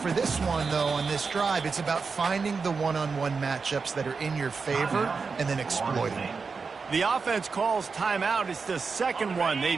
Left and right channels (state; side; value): quieter; left; 4.9 dB